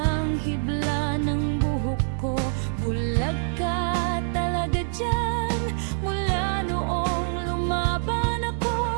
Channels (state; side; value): silent; left; digital silence